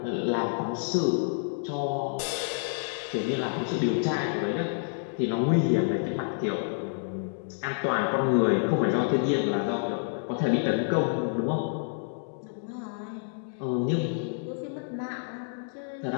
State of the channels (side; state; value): right; silent; digital silence